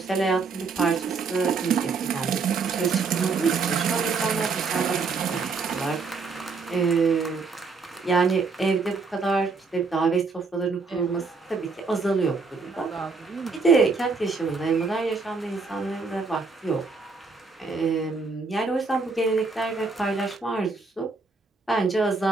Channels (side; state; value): left; quieter; 4.3 dB